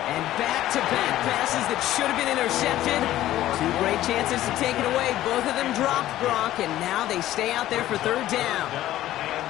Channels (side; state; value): right; quieter; 14.0 dB